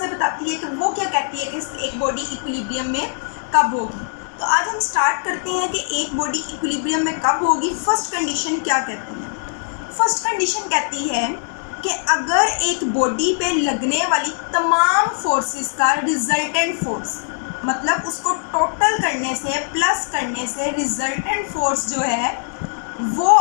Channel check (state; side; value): silent; right; 65 dB below the other